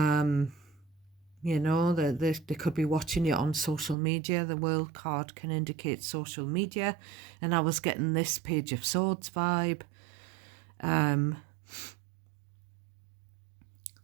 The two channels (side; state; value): left; drops out; at 4.0 s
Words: know, they could be watching you on social media. The World card can indicate social media, and I was getting this Page of Swords vibe.